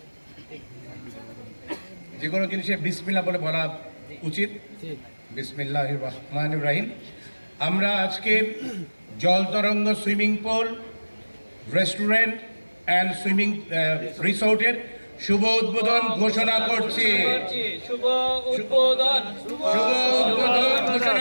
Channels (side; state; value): both; inverted; correlation -1.00